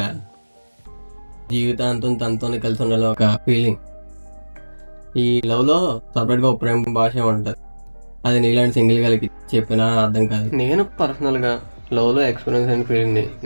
జీవితాంతం తనతోనే కలిసి ఉండాలి ఒక ఫీలింగ్. ఈ లవ్లో సపరేట్గా ఒక ప్రేమ భాష ఉంటుంది. అది నీలాంటి సింగిల్ గారికి చెప్పినా అర్థం కాదు. నేను పర్సనల్గా లవ్లో ఎక్స్పీరియన్స్ అయిన ఫీలింగ్ని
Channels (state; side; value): inverted; both; correlation -1.00